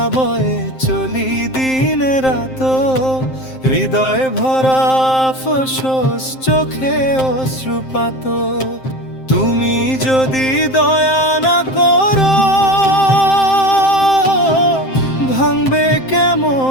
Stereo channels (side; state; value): right; late; 7.6 ms